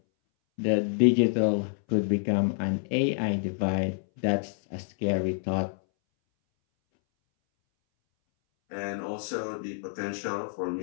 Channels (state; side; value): silent; right; 60 dB below the other